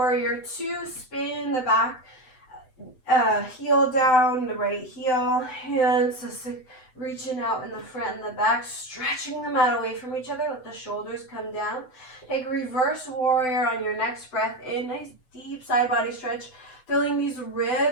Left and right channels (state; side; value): late; right; 7.9 ms